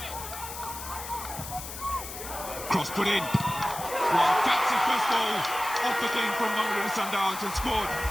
Cross put in. Well, that's the first goal of the game from Mamelodi Sundowns and scored.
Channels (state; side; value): noise; left; hiss, 10 dB below the sound